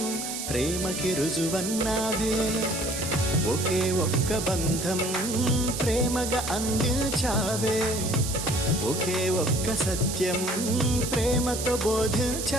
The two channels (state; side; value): noise; right; hiss, 5 dB below the sound